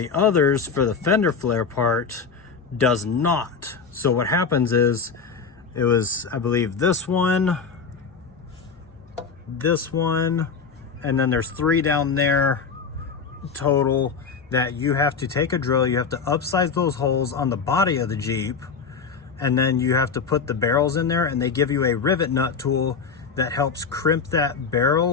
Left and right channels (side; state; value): right; quieter; 5.5 dB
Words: others for the fender flare part does not. So what happens is, it was, I believe, this one, and then there's 3 down there total that you have to take a drill. You have to upsize those holes on the body of the Jeep, and then you have to put the barrels in there, and they give you a rivet nut tool that helps crimp that